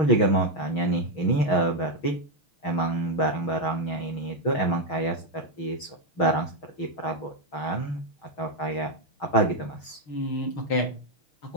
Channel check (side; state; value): right; late; 6.2 ms